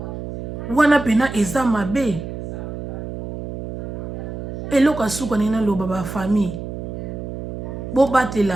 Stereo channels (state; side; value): noise; right; hum, 7 dB below the sound